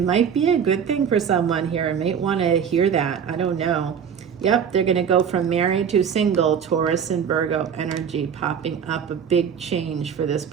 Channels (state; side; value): quieter; left; 7.5 dB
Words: might be a good thing for someone here. I might want to hear that. I don't know. Yep, they're going to go from married to single. Taurus and Virgo energy popping up, a big change for this